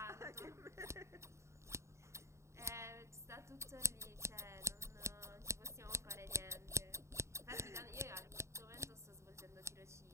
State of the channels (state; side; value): late; left; 0.14 ms